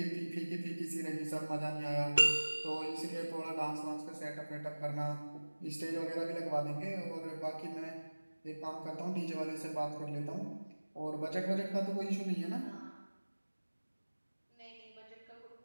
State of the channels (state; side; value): inverted; both; correlation -1.00